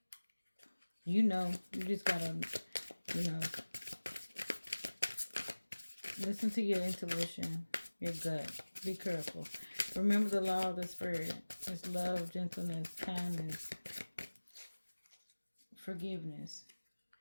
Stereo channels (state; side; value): inverted; both; correlation -1.00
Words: You know. You just gotta, listen to your intuition, your gut. Be careful. Remember the law of the spirit. It's love, gentleness, kindness, forgiveness.